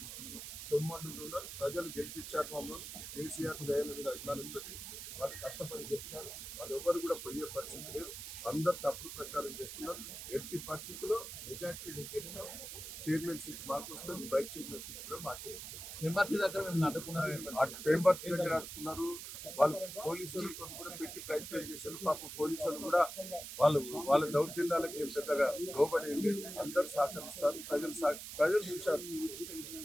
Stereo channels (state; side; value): noise; right; hiss, 9 dB below the sound